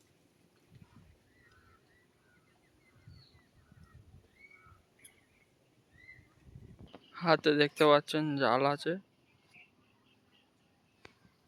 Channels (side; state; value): both; identical; correlation 1.00